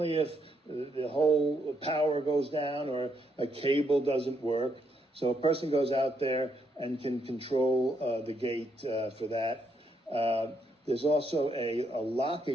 if the whole power goes down or a cable doesn't work. So a person goes out there and can control the gate for that. There's also a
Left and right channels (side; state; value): both; normal; correlation 0.76